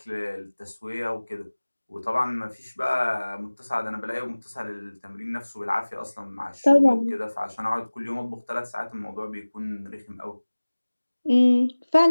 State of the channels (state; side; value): inverted; both; correlation -1.00